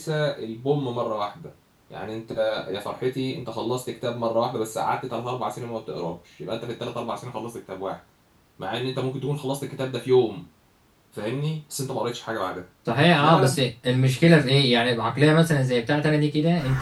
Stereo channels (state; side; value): identical; both; correlation 1.00